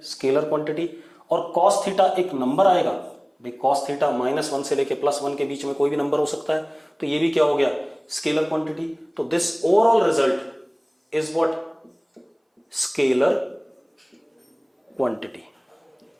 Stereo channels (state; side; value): identical; both; correlation 1.00